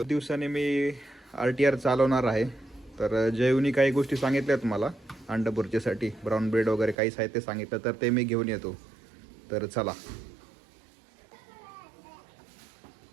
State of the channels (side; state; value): left; drops out; at 7.0 s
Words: दिवसाने मी RTR चालवणार आहे. तर जयूनी काही गोष्टी सांगितल्यात मला अंडा बुर्जीसाठी, ब्राऊन ब्रेड वगैरे काही साहित्य सांगितलं, तर ते मी घेऊन येतो. तर चला.